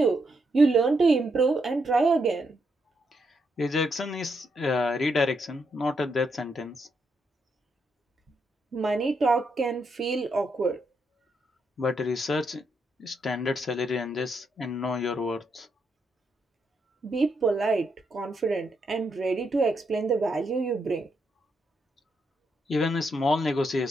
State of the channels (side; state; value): both; normal; correlation 0.79